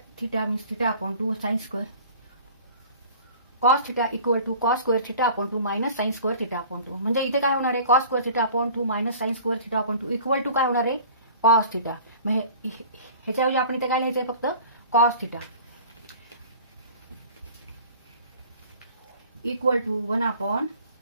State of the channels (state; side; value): inverted; both; correlation -0.46